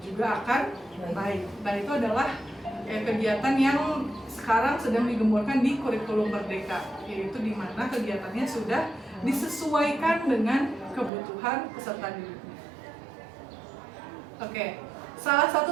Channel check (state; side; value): drops out; left; at 11.1 s